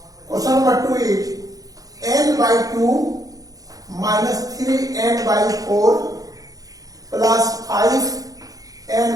Question number 2 is n by 2 minus 3n by 4 plus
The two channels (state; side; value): late; left; 0.17 ms